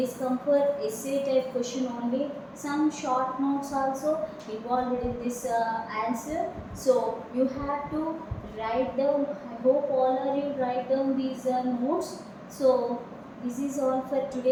come for essay type question only. Some short notes also involved in this answer. So you have to write down. I hope all of you write down these notes. So this is all for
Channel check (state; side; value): identical; both; correlation 1.00